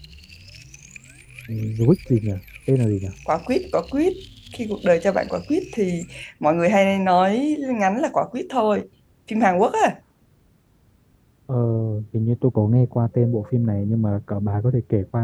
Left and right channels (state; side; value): identical; both; correlation 1.00